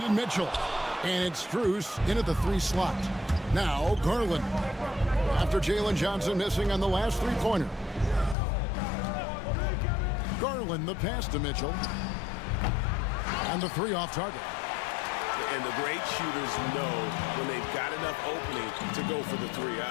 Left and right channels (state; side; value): drops out; right; at 8.3 s